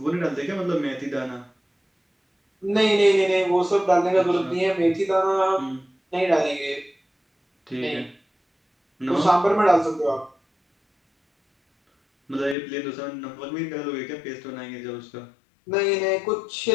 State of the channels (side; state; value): right; drops out; at 12.6 s